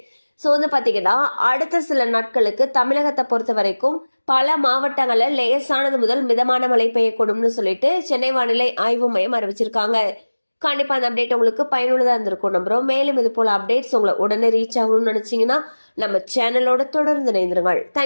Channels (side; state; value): both; inverted; correlation -1.00